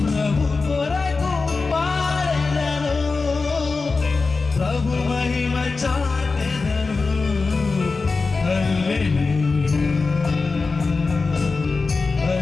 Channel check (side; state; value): right; quieter; 4.1 dB